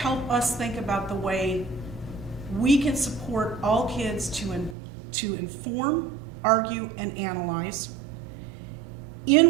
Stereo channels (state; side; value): drops out; left; at 4.8 s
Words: us think about the way we can support all kids to inform, argue, and analyze